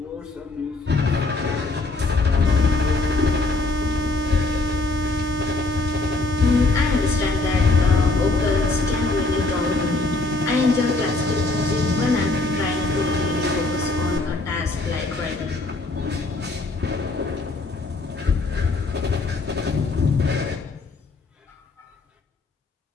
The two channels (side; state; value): right; quieter; 3.3 dB